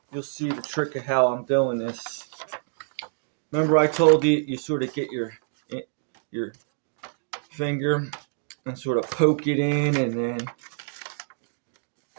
you'll see the trick of how I'm doing this. Remember I told you, you sort of get your finger and sort of poke it in, and then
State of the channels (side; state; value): left; silent; digital silence